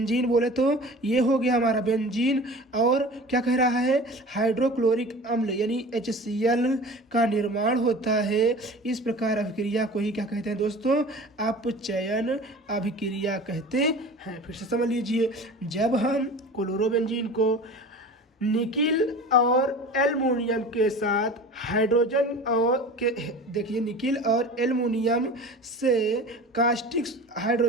बोले तो ये हो गया हमारा बेंजीन। और क्या कह रहा है, हाइड्रोक्लोरिक अम्ल यानी HCl का निर्माण होता है। इस प्रकार अभिक्रिया को ही क्या कहते हैं दोस्तों, अपचयन अभिक्रिया कहते हैं। फिर से समझ लीजिए, जब हम क्लोरोबेंजीन को निकिल और एल्युमिनियम के साथ हाइड्रोजन और के देखिए निकिल और एल्युमिनियम से कास्टिक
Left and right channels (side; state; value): both; normal; correlation 0.38